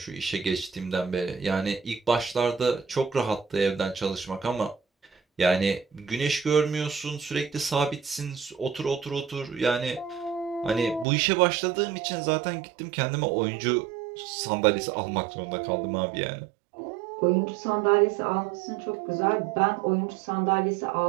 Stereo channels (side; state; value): left; drops out; at 11.1 s